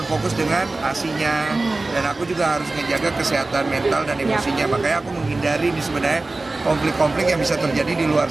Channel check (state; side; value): quieter; left; 3.2 dB